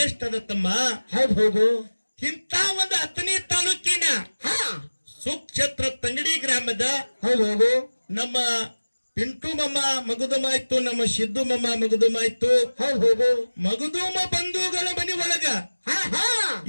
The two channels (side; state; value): both; inverted; correlation -1.00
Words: ತಮ್ಮ. ಹೌದು. ಇಂಥ ಒಂದು ಅಥಣಿ ತಾಲೂಕಿನ ಹಾ, ಸುಕ್ಷೇತ್ರ ತಂಗಡಿ ಗ್ರಾಮದ ಹೌದು. ನಮ್ಮ ಪಿಂಟು ಮಮ್ಮ ಮಗುದುಮಾಯ್ತು, ನಮ್ಮ ಸಿದ್ದು ಮಮ್ಮ ಮಗುದುಮಾಯ್ತು, ಹೌದು. ಮಗುದುಮ ಬಂಧುಗಳ ಮನೆ ಒಳಗ ಹಾ, ಹಾ,